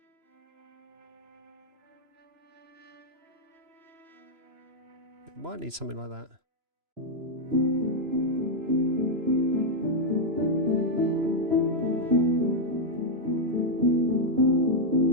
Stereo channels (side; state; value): left; late; 3.0 ms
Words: It might need something like that.